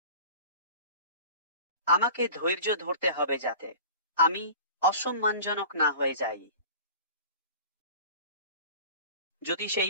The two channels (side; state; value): both; inverted; correlation -0.40